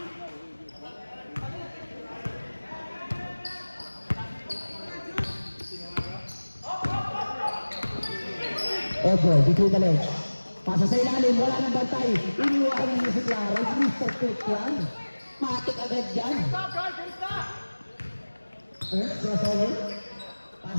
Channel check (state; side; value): inverted; both; correlation -1.00